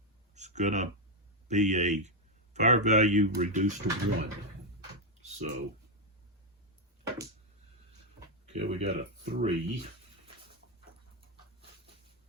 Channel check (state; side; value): normal; both; correlation 0.03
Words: is going to be a fire value reduced to 1. So, okay, we got a 3,